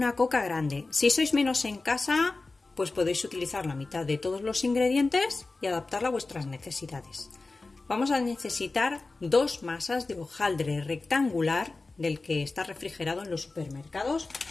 coca grande. Si sois menos en casa, pues podéis utilizar la mitad de todos los ingredientes y adaptarla a vuestras necesidades. Vamos a necesitar 2 masas de hojaldre rectangular del que está refrigerado en los supermercados.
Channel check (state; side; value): quieter; right; 3.5 dB